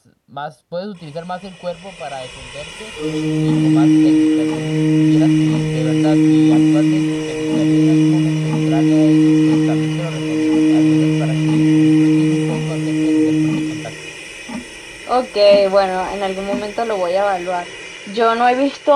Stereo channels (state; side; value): identical; both; correlation 1.00